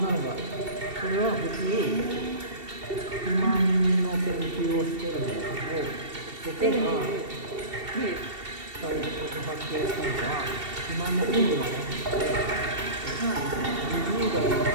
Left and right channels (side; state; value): left; late; 2.7 ms